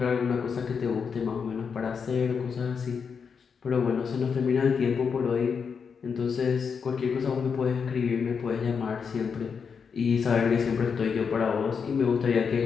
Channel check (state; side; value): quieter; right; 6.1 dB